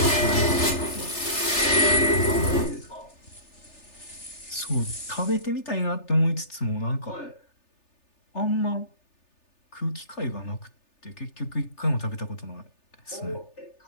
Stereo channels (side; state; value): right; late; 3.4 ms